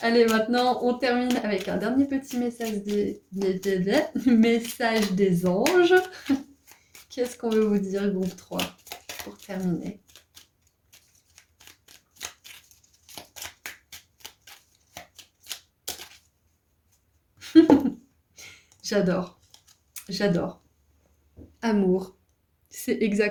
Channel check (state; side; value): identical; both; correlation 1.00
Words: maintenant, on termine avec un dernier petit message message des anges. Qu'est-ce qu'on veut vous dire, groupe 3, pour terminer? J'adore, j'adore. Amour. C'est